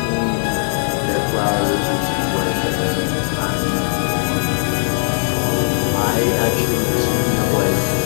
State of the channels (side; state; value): right; silent; digital silence